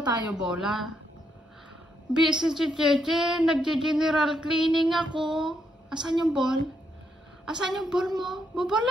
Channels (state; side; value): normal; both; correlation 0.78